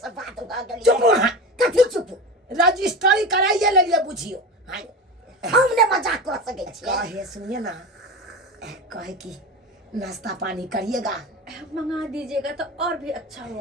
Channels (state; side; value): normal; both; correlation 0.27